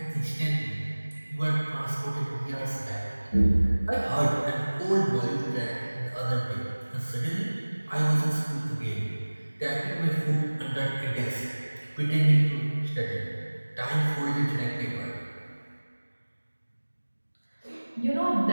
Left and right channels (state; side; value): inverted; both; correlation -1.00